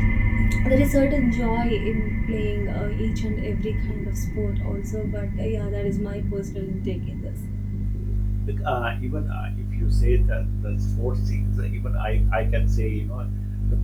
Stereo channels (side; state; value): both; identical; correlation 1.00